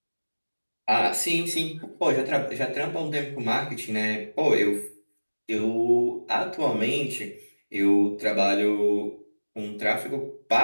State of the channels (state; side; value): inverted; both; correlation -1.00